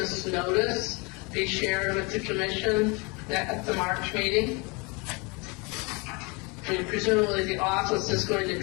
notice be shared with the commission at the March meeting? I mean, presumably the office is going to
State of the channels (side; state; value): right; quieter; 28.9 dB